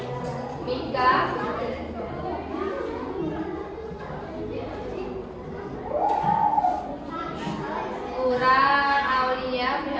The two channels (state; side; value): identical; both; correlation 1.00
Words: Mika, Kurang, Aulia,